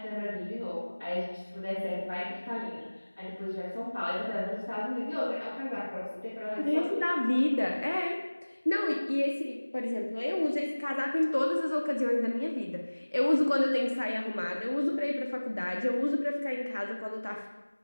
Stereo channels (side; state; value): both; inverted; correlation -1.00